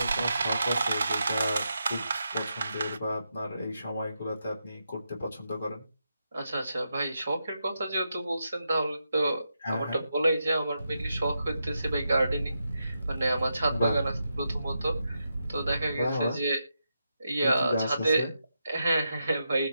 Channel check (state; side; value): inverted; both; correlation -0.85